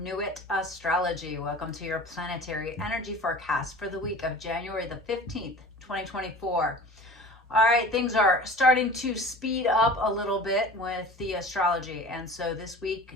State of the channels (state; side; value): normal; both; correlation 0.40